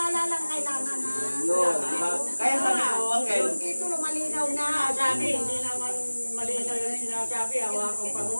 lang kailangan na. Yun, diba? Kaya sabi ko, Uncle, Yung titulo malinaw na. Sabi, hindi naman malinaw yung sinasabi. Hawakan pa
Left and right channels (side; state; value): both; inverted; correlation -1.00